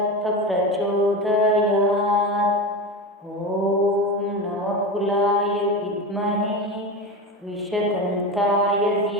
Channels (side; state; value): both; normal; correlation 0.23